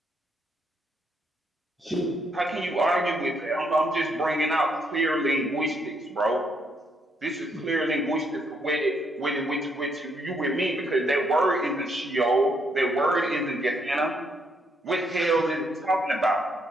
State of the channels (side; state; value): both; normal; correlation 0.74